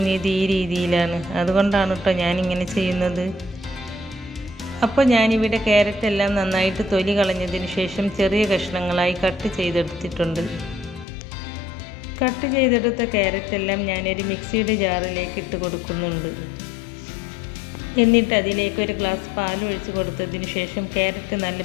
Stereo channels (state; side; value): drops out; right; at 11.1 s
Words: ഈ രീതിയിലാണ്. അതുകൊണ്ടാണ് കേട്ടോ ഞാനിങ്ങനെ ചെയ്യുന്നത്. അപ്പോൾ ഞാനിവിടെ ക്യാരറ്റ് എല്ലാം നന്നായിട്ട് തൊലി കളഞ്ഞതിന് ശേഷം ചെറിയ കഷ്ണങ്ങളായി കട്ട് ചെയ്തെടുത്തിട്ടുണ്ട്. കട്ട് ചെയ്തെടുത്ത ക്യാരറ്റ് എല്ലാം ഞാനൊരു മിക്സിയുടെ ജാറിലേക്ക് ഇട്ട് കൊടുക്കുന്നുണ്ട്. എന്നിട്ട് അതിലേക്ക് ഒരു ഗ്ലാസ് പാൽ ഒഴിച്ച് കൊടുത്തതിന് ശേഷം ക്യാരറ്റ് നല്ല